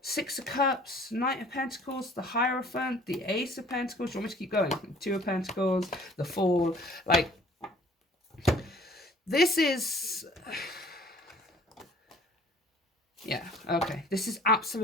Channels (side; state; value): both; normal; correlation 0.53